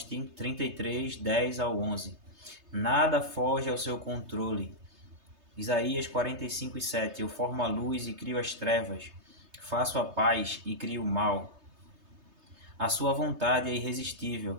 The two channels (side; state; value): left; late; 3.3 ms